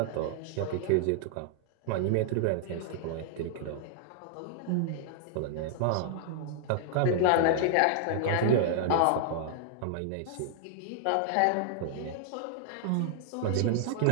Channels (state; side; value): different; both; correlation -0.01